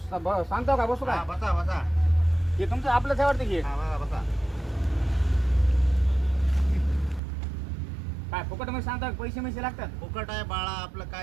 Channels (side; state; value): left; drops out; at 7.2 s